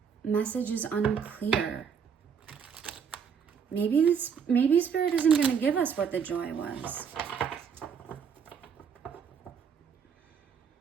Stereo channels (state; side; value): quieter; left; 6.9 dB